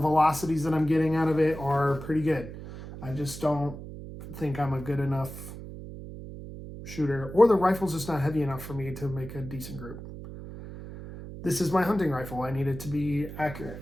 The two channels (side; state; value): right; noise; hum, 11 dB below the sound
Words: that I'm getting out of it, are pretty good. I just don't think I'm a good enough shooter, or the rifle's just not heavy enough for me to make a decent group. This is my hunting rifle. I need it to be